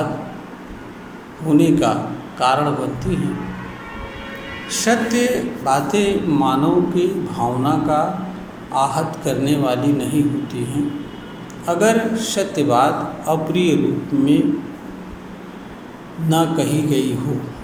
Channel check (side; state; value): both; identical; correlation 1.00